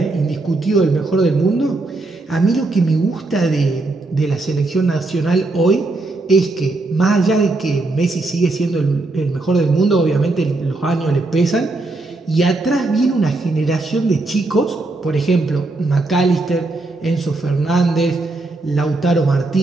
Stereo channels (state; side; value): quieter; left; 3.1 dB